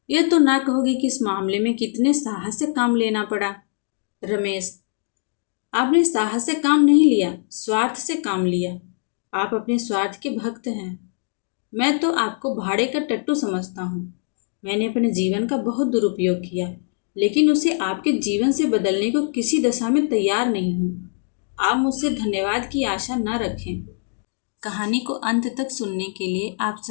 यह तो ना कहोगे कि इस मामले में कितने साहस से काम लेना पड़ा। रमेश, आपने साहस से काम नहीं लिया, स्वार्थ से काम लिया। आप अपने स्वार्थ के भक्त हैं। मैं तो आपको भाड़े का टट्टू समझता हूँ। मैंने अपने जीवन का बहुत दुरुपयोग किया, लेकिन उसे आपके जीवन से बदलने को किसी दशा में तैयार नहीं हूँ। आप मुझसे धन्यवाद की आशा न रखें। कहानी को अंत तक सुनने के लिए आप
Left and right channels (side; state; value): right; silent; 64 dB below the other